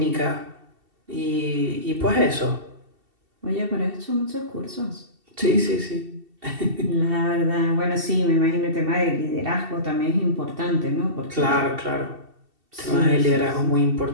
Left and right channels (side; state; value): left; late; 2.7 ms